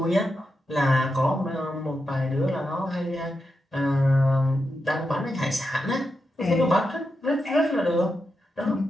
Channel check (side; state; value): both; normal; correlation 0.87